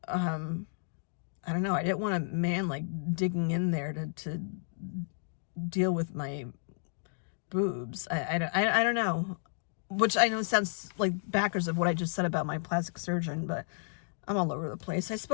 I don't know, I didn't want a man like digging in there to deal with my boobs. I don't know, which I know sounds like backwards of what I just said about my plastic surgeon, but I'm all over the place. I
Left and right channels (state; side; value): silent; right; digital silence